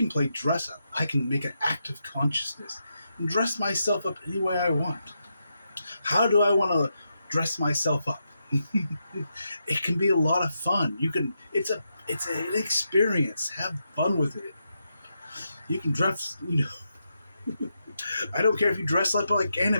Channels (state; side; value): inverted; both; correlation -0.84